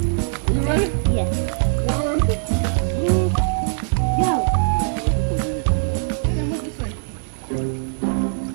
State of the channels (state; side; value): silent; left; digital silence